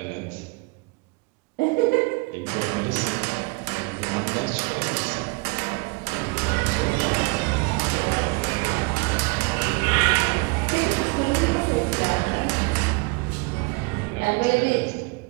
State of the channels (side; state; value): left; quieter; 28.7 dB